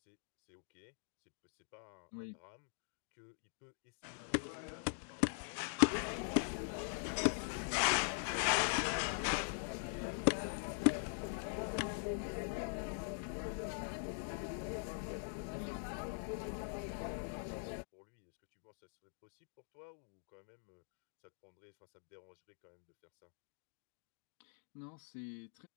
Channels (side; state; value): right; silent; digital silence